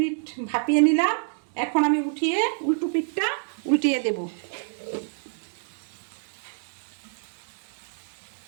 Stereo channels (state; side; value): silent; left; digital silence